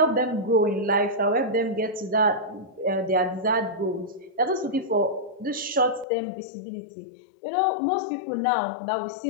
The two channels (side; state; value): right; drops out; at 6.1 s